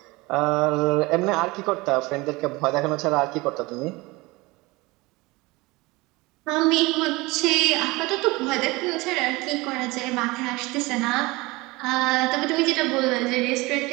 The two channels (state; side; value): quieter; left; 22.7 dB